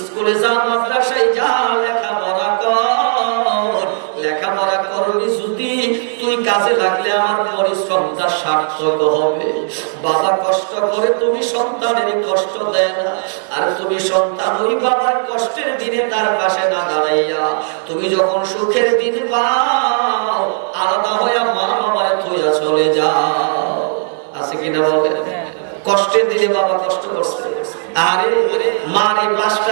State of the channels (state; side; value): silent; left; digital silence